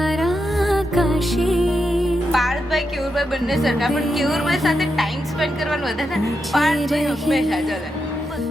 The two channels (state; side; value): normal; both; correlation 0.85